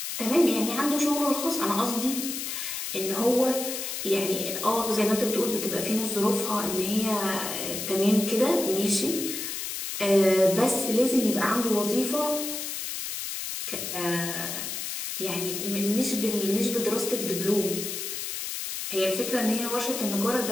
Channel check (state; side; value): noise; left; hiss, 5 dB below the sound